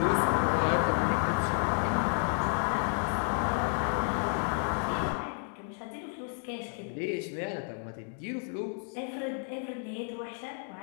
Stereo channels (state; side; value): silent; right; 57 dB below the other